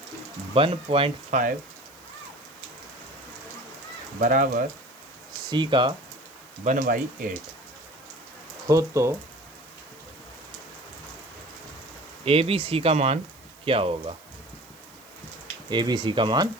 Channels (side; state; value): right; noise; hiss, 25 dB below the sound